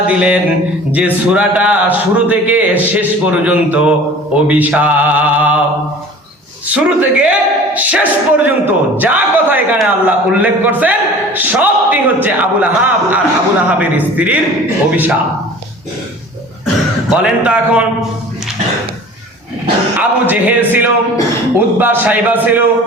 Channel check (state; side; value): normal; both; correlation 0.43